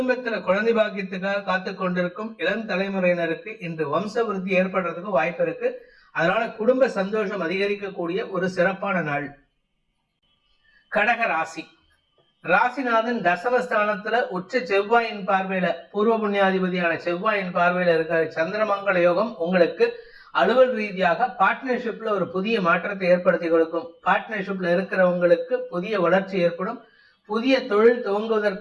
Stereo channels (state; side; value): identical; both; correlation 1.00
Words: குழந்தை பாக்கியத்துக்காக காத்து கொண்டிருக்கும் இளம் தலைமுறையினருக்கு இன்று வம்ச விருத்தி ஏற்படுறதுக்கு வாய்ப்பு இருக்கு. அதனால குடும்ப சந்தோஷம் அதிகரிக்கக்கூடிய ஒரு சிறப்பான நாள். கடக ராசி. ராசிநாதன் தசமஸ்தானத்துல உச்ச செவ்வாயின் பார்வையில, பூர்வ புண்ணியாதிபதியான செவ்வாயின் பார்வையில இருக்கிற சந்திரமங்கல யோகம் உங்களுக்கு அலுவல் ரீதியாக பார்ட்னர்ஷிப்ல ஒரு புதிய மாற்றத்தை ஏற்படுத்தி கொடுக்கும். பார்ட்னர்ஷிப்ல இருக்கிறவங்களுக்கு புதிய வளர்ச்சி ஏற்படும். புதிய தொழில்